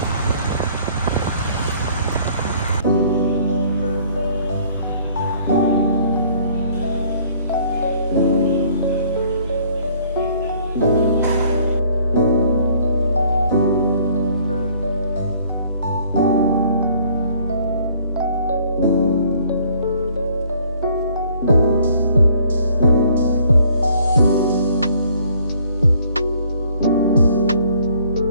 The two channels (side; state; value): both; inverted; correlation -0.59